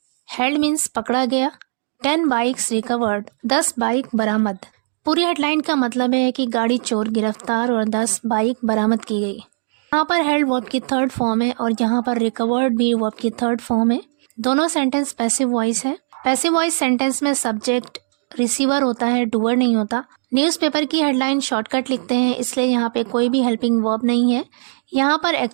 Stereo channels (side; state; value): left; silent; digital silence